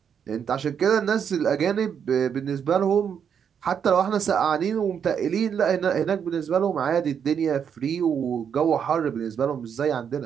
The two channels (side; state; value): left; quieter; 7.7 dB